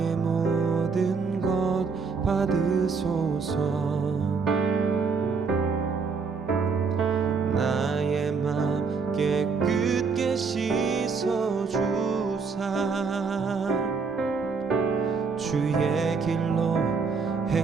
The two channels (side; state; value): left; quieter; 5.0 dB